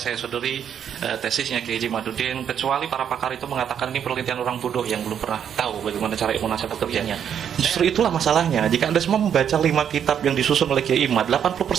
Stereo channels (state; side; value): quieter; left; 8.6 dB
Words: saya sodori tesisnya Kiai Haji Madudin, kecuali para pakar itu mengatakan ini penelitian orang bodoh yang belum pernah tahu bagaimana cara ilmu nasab bekerjanya. Justru itulah masalahnya. Jika Anda semua membaca 5 kitab yang disusun oleh Kiai Imad,